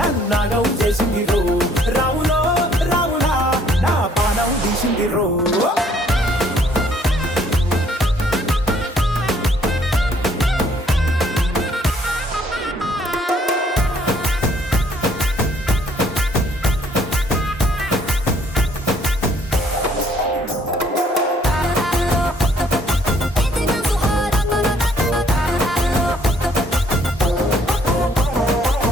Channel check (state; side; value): normal; both; correlation 0.63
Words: నన్నాగం చేసింది రో రాములో రాములా నా పానం తీసింది రో